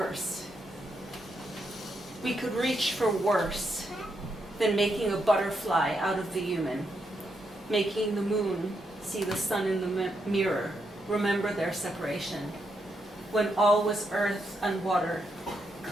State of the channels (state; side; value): normal; both; correlation 0.80